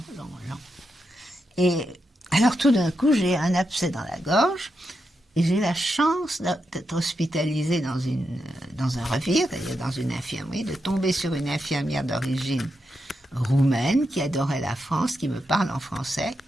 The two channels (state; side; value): normal; both; correlation 0.85